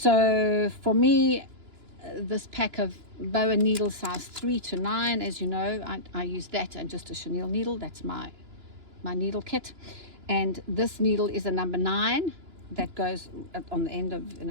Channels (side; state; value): left; late; 2.9 ms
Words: for me, this pack of boa needle size 3 to 9, as you know, I use that and just a chenille needle. That's my needle kit. And this needle is a number 9. That goes on the end of,